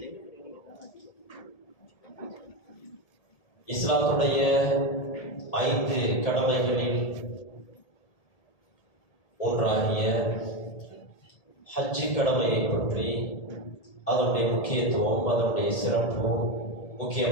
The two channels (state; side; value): late; right; 1.8 ms